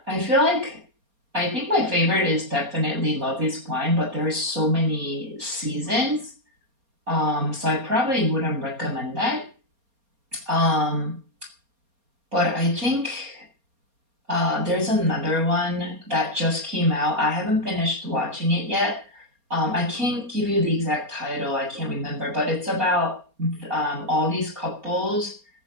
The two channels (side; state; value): left; late; 4.3 ms